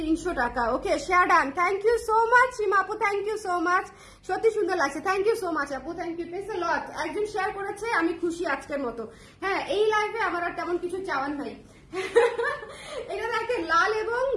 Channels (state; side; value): identical; both; correlation 1.00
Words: টাকা। Okay share done, thank you so much Seema আপু, থ্যাংক ইউ সো মাচ, সত্যি সুন্দর লাগছে, থ্যাংক ইউ সো মাচ আপু, thank you please a lot. একজন শেয়ার করেছে, আমি খুশি আজকের মতো। হ্যাঁ এই লাইভে আমার আর তেমন কিছু চাওয়ার নাই। এটা দেখেন লাল এবং